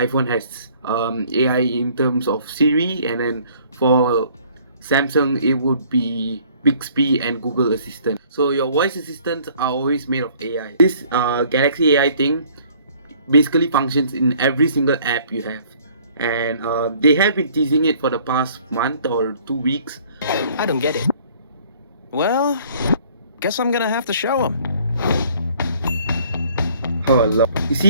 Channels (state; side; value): inverted; both; correlation -0.57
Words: has AI in terms of Siri, and then for Samsung it would be Bixby and Google Assistant. So your voice assistants are always made of AI. This Galaxy AI thing basically functions in every single app you have, and they have been teasing it for the past month or 2 weeks. I don't get it. Well, guess I'm gonna have to show them. Oh Lord. You